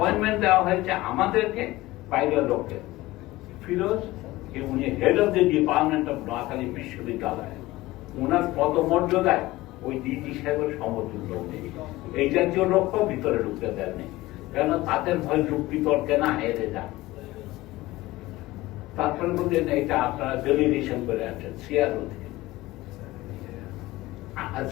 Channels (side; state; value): right; quieter; 18.5 dB